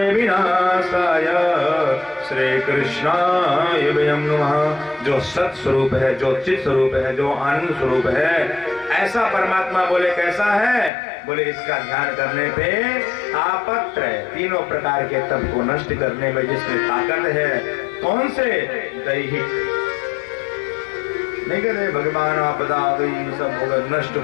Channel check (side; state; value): right; drops out; at 10.9 s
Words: विनाशाय श्री कृष्णाय वयं नमः। जो सत स्वरूप है, जो चित स्वरूप है, जो आनंद स्वरूप है, ऐसा परमात्मा बोले कैसा है? बोले इसका ध्यान करने पे तापत्र, तीनों प्रकार के तप को नष्ट करने में जिसमें ताकत है। कौन से? दैहिक नहीं कहते भगवान आपदा आ गई, सब हो गया, नष्ट